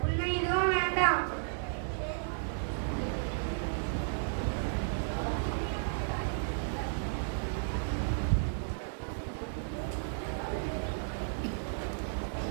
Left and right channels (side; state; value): left; silent; digital silence